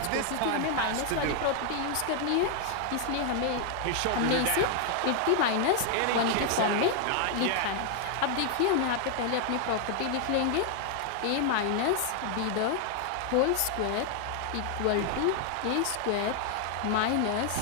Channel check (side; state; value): both; different; correlation 0.00